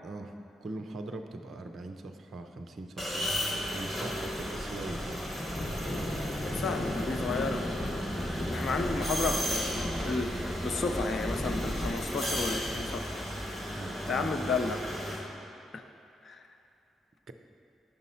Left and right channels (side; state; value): both; normal; correlation 0.79